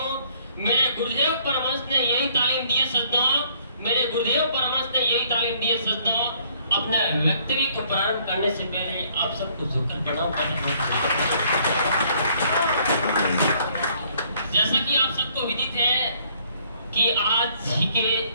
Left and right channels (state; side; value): inverted; both; correlation -0.63